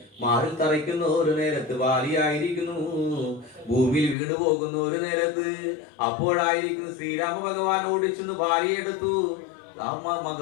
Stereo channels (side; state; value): right; drops out; at 4.2 s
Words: മാറിൽ തറയ്ക്കുന്ന ഒരു നേരത്ത് ബാലിയായിരിക്കുന്നു ഭൂമിയിൽ വീണു പോകുന്ന ഒരു നേരത്ത് അപ്പോഴായിരിക്കുന്നു ശ്രീരാമ ഭഗവാൻ ഓടിച്ചെന്ന് ബാലിയെടുത്തു